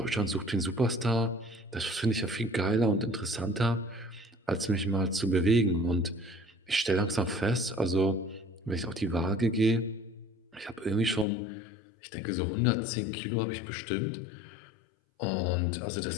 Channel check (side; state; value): right; drops out; at 11.2 s